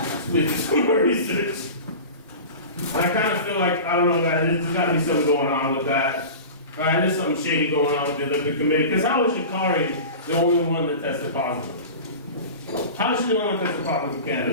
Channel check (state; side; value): inverted; both; correlation -0.33